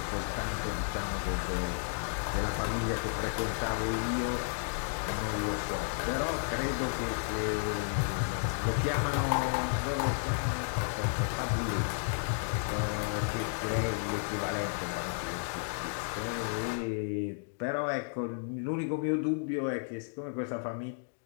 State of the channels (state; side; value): silent; right; digital silence